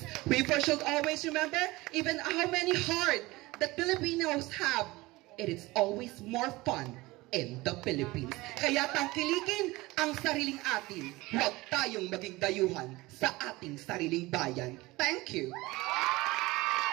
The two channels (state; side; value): quieter; left; 20.7 dB